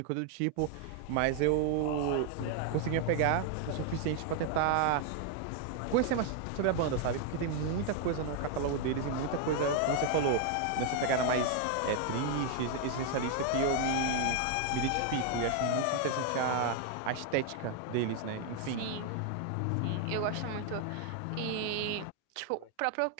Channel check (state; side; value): different; both; correlation 0.00